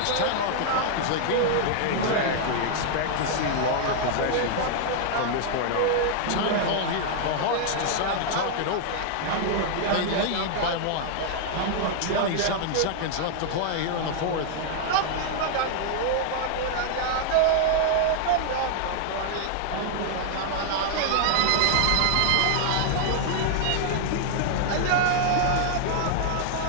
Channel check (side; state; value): both; different; correlation 0.00